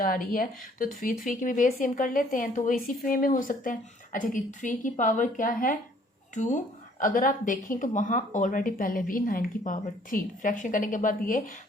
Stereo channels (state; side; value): normal; both; correlation 0.60